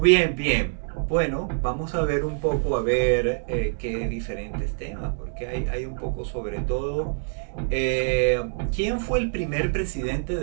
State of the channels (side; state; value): left; silent; digital silence